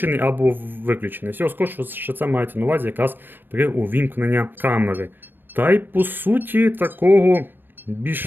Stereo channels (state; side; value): late; left; 0.094 ms